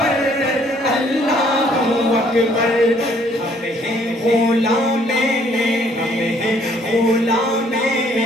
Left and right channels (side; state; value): both; normal; correlation 0.63